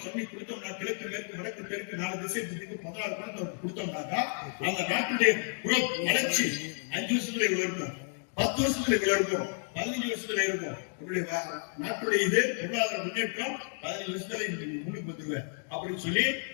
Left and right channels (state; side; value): silent; right; 57 dB below the other